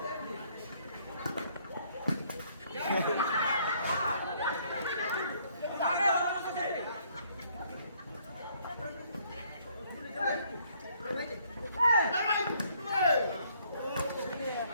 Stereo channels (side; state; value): both; inverted; correlation -0.66